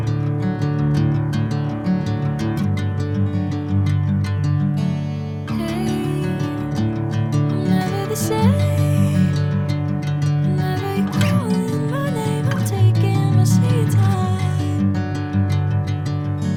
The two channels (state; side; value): identical; both; correlation 1.00